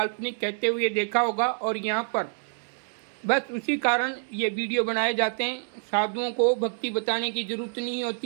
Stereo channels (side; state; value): left; silent; digital silence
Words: कहते हुए देखा होगा, और यहाँ पर बस उसी कारण ये वीडियो बनाए जाते हैं। साधुओं को भक्ति बताने की जरूरत नहीं